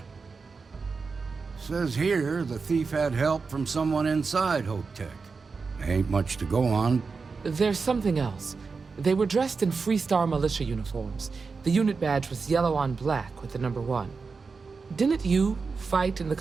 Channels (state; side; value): quieter; left; 4.7 dB